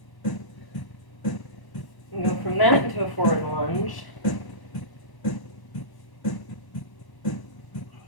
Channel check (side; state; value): right; late; 1.0 ms